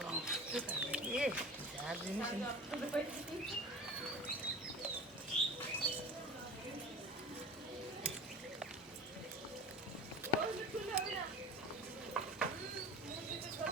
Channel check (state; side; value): normal; both; correlation 0.36